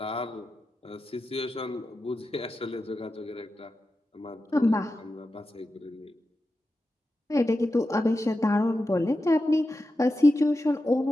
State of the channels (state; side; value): normal; both; correlation 0.91